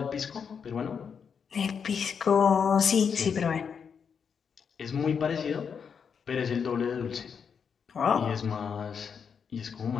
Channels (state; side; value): quieter; right; 6.7 dB